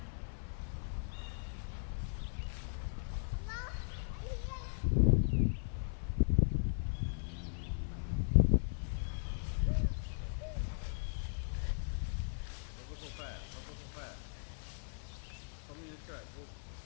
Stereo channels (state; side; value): silent; right; 52 dB below the other